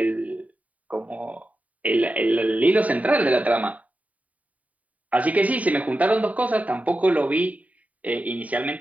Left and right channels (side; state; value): left; late; 0.070 ms